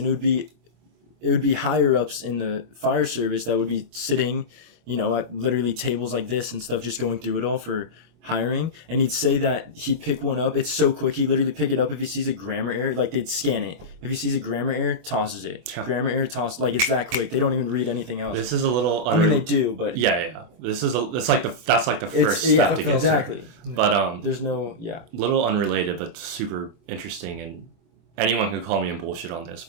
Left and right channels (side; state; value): left; late; 24 ms